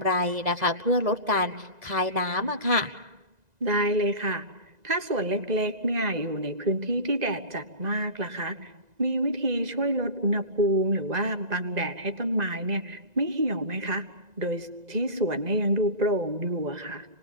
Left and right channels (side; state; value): left; late; 2.0 ms